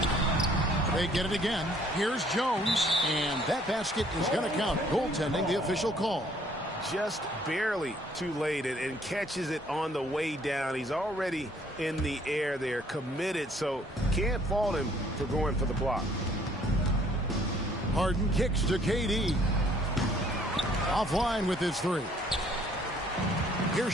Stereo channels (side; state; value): both; normal; correlation 0.61